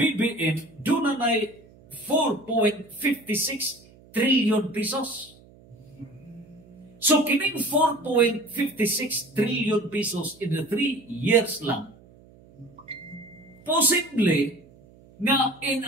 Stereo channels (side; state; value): right; noise; hum, 25 dB below the sound